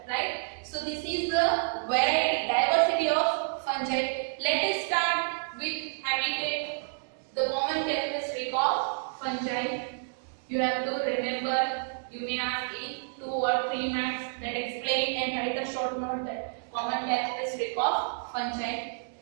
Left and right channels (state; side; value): silent; left; digital silence